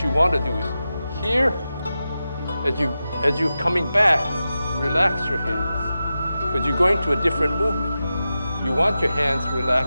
you want to do is here, as you're coming back, relax your hands, because you're going to a different movement. You want your hands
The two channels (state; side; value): inverted; both; correlation -0.92